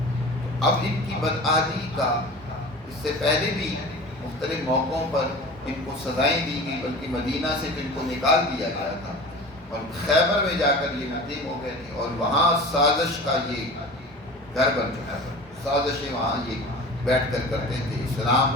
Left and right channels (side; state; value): both; normal; correlation 0.37